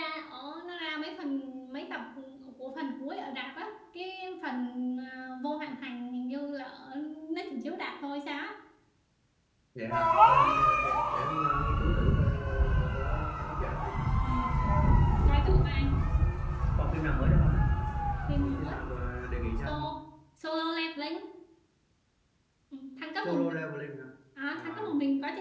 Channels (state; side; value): identical; both; correlation 1.00